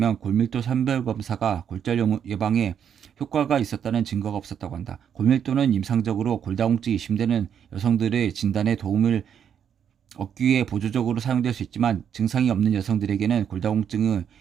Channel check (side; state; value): left; quieter; 8.4 dB